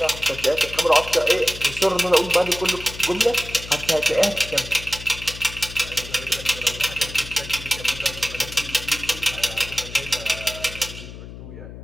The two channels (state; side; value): noise; left; hum, 13 dB below the sound